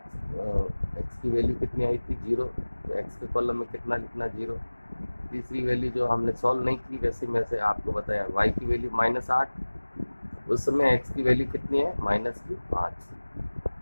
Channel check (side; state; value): both; inverted; correlation -1.00